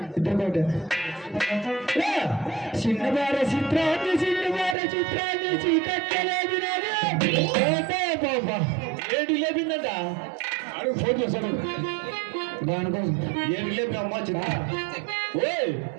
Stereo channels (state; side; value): drops out; left; at 4.8 s